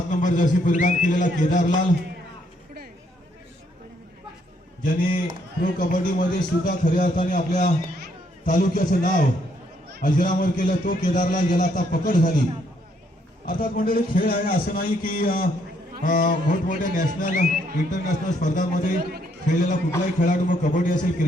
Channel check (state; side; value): normal; both; correlation 0.71